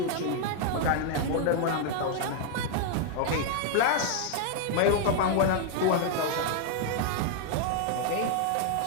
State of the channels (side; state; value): both; different; correlation 0.00